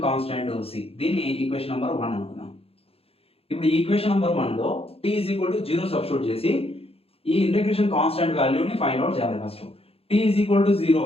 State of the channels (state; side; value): late; right; 0.28 ms